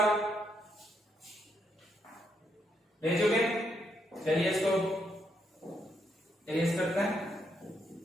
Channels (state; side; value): normal; both; correlation 0.77